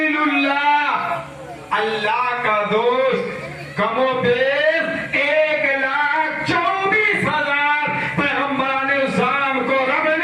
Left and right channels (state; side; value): identical; both; correlation 1.00